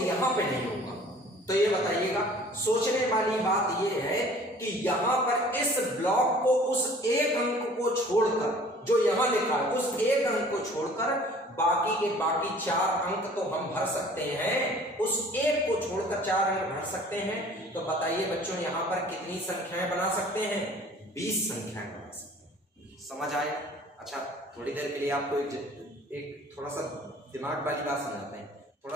पे नहीं होगा। तो ये बताइएगा, सोचने वाली बात ये है कि यहां पर इस ब्लॉक को उस एक अंक को छोड़कर, जो यहां लिखा है उस एक अंक को छोड़कर बाकी के बाकी 4 अंक तो हम भर सकते हैं, उस एक को छोड़कर 4 अंक भर सकते हैं। तो बताइए बच्चों, यहां पर कितनी संख्याएं बना सकते हैं? 20 संख्याएं बना सकते हैं। समझ आया? अच्छा, थोड़ी देर के लिए आपको एक थोड़ा सा दिमाग वाली बात समझाते हैं। थोड़ा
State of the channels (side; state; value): both; normal; correlation 0.50